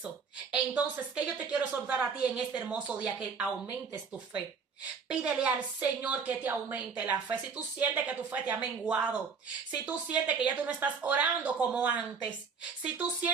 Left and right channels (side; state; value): left; quieter; 5.6 dB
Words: Entonces, ¿qué yo te quiero exhortar a ti en este hermoso día? Que aumentes tu fe. Pídele al Señor que te aumente la fe. Si tú sientes que tu fe te ha menguado, si tú sientes que ya tú no estás orando como antes, si tú